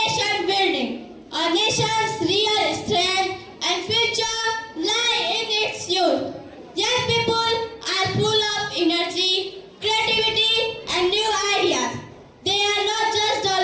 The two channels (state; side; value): identical; both; correlation 1.00